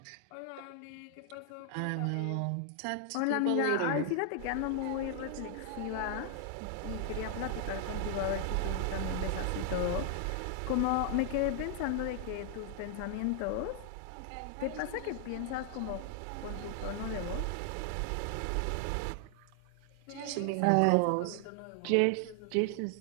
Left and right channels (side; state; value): both; different; correlation 0.00